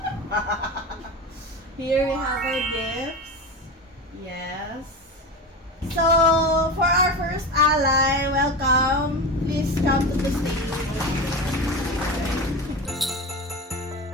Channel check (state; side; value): normal; both; correlation 0.25